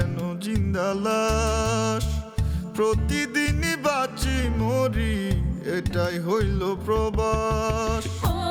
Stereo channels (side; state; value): both; identical; correlation 1.00